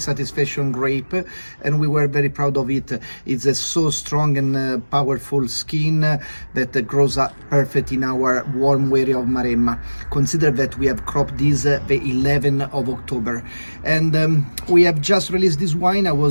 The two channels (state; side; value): inverted; both; correlation -1.00